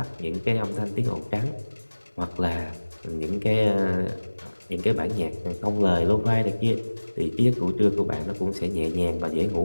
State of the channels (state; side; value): inverted; both; correlation -1.00